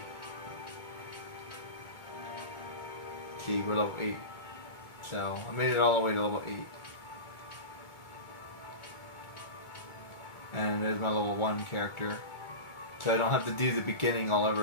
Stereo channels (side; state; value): right; late; 2.2 ms